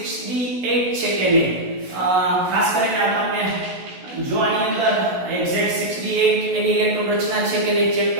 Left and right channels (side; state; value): left; late; 16 ms